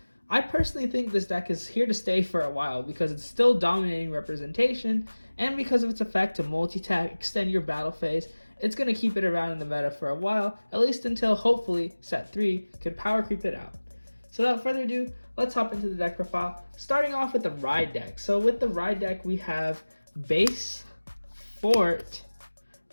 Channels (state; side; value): inverted; both; correlation -1.00